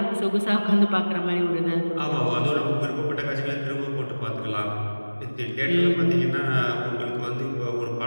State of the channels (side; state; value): both; inverted; correlation -1.00